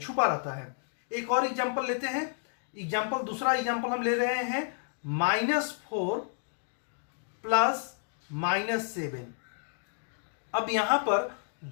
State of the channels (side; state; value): right; silent; digital silence